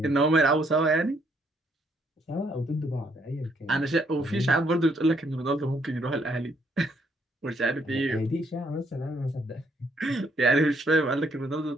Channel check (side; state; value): both; normal; correlation 0.70